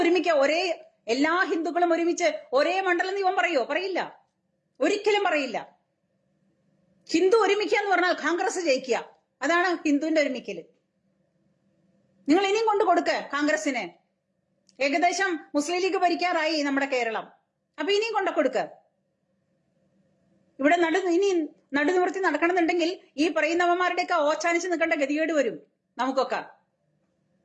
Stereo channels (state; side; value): identical; both; correlation 1.00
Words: എല്ലാ ഹിന്ദുക്കളും ഒരുമിച്ച് ഒരേ മണ്ഡലം ഇവൻ പറയോ? പറയില്ല, ഒരിക്കലും പറയില്ല. ഹിന്ദു ഒരുമിക്കുക എന്ന് പറഞ്ഞാൽ കോൺഗ്രസ് ജയിക്കുക. അതാണ് ഹിന്ദുവിന്റെ ഒരുമിക്കല്. നിങ്ങൾ ഇനിയും കൊണ്ടു കൊടുക്ക കോൺഗ്രസിന്. ഏകദേശം മുസ്ലിം ലീഗ് ഭരിക്കാറായി നമ്മുടെ കേരളം. അപ്പൊ ഇനിയും കൊണ്ടു കൊടുക്ക. ഇവിടെ ഇനി നടുനിവർത്തി നടക്കണമെന്നുണ്ടെങ്കിൽ ഈ പറയുന്നവന്മാരുടെയൊക്കെ ഓച്ചാനിച്ച് നിൽക്കേണ്ട ഗതികേട് വരും നമുക്കൊക്കെ.